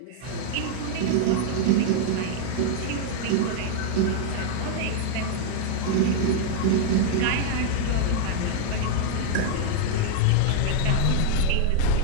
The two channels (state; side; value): different; both; correlation 0.00